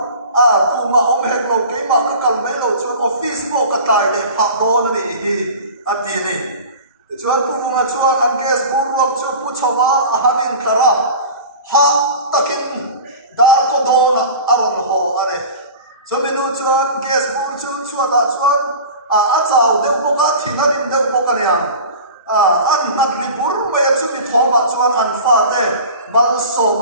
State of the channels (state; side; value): inverted; both; correlation -0.36